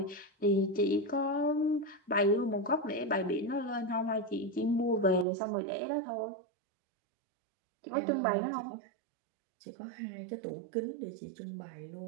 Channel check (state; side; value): drops out; left; at 5.2 s